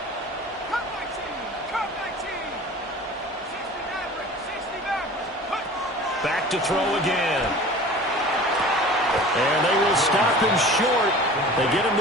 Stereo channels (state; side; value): normal; both; correlation 0.41